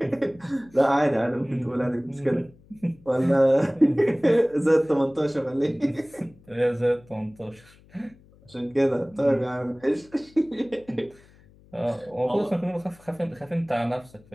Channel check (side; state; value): left; noise; hum, 27 dB below the sound